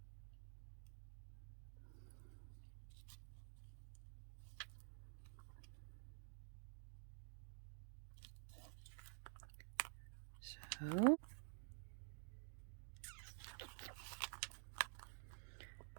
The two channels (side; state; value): left; silent; digital silence